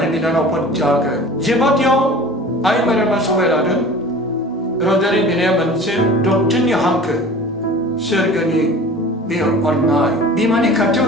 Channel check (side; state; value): both; normal; correlation 0.41